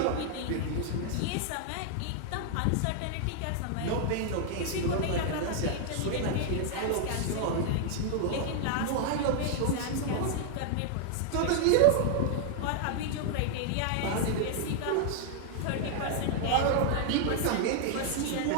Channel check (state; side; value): different; both; correlation 0.00